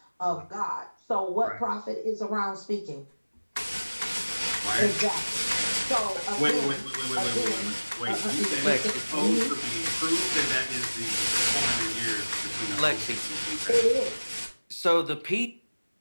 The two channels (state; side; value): inverted; both; correlation -1.00